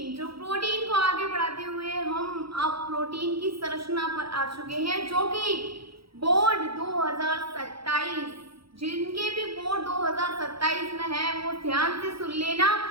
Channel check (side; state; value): left; late; 0.75 ms